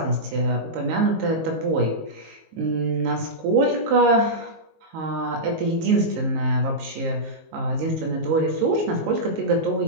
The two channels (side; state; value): left; late; 19 ms